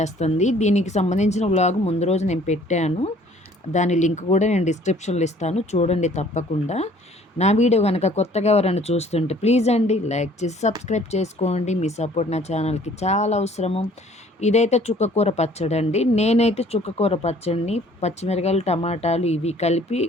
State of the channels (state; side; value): normal; both; correlation 0.56